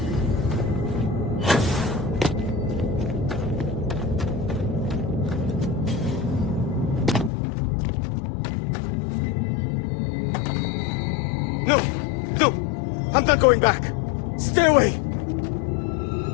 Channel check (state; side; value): drops out; right; at 7.3 s